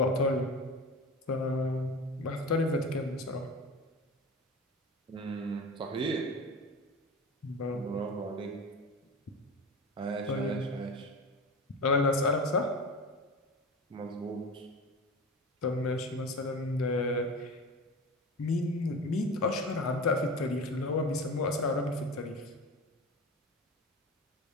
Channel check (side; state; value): both; normal; correlation 0.30